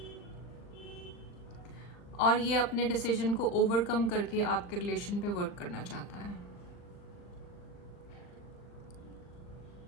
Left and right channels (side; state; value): right; late; 39 ms